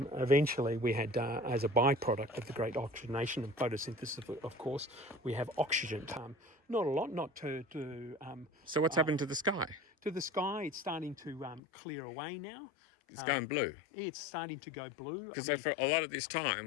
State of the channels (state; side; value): drops out; right; at 11.6 s